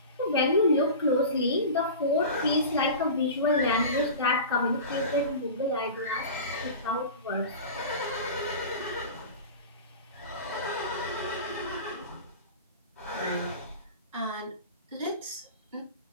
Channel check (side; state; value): both; inverted; correlation -0.33